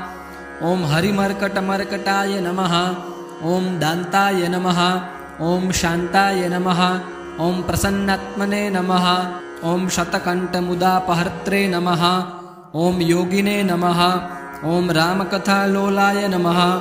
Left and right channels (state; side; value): identical; both; correlation 1.00